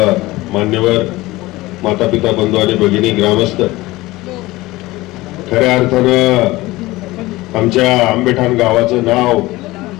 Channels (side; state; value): right; quieter; 19.3 dB